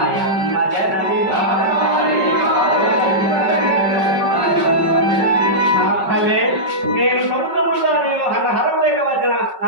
నేను సముద్రములో నేను హరం లేక వచ్చిన నా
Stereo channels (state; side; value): late; left; 5.3 ms